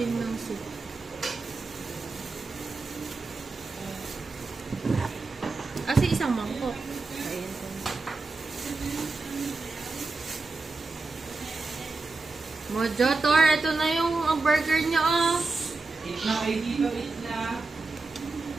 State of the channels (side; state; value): left; quieter; 3.6 dB